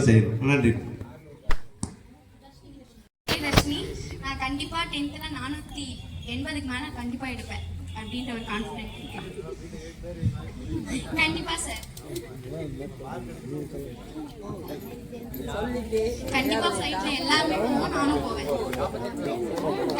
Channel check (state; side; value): identical; both; correlation 1.00